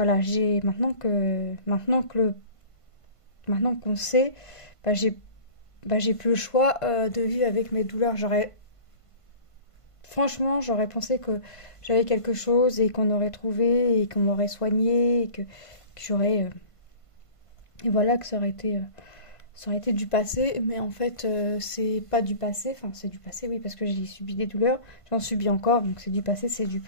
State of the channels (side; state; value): right; late; 1.5 ms